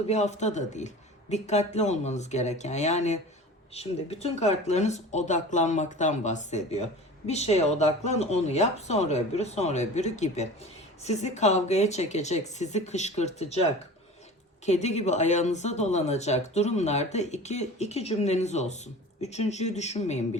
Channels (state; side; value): normal; both; correlation 0.38